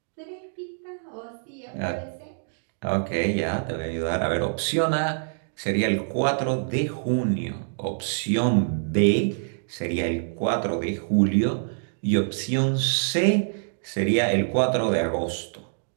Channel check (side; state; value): left; silent; digital silence